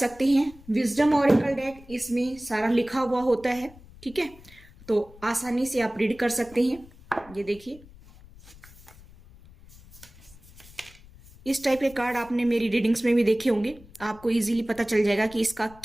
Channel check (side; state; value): left; noise; rumble, 22 dB below the sound